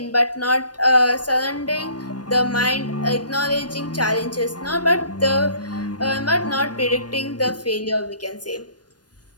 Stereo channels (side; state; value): right; late; 0.69 ms